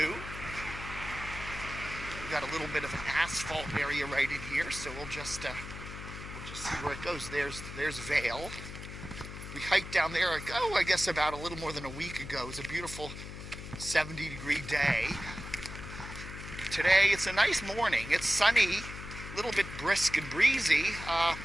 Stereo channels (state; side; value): noise; left; hum, 10 dB below the sound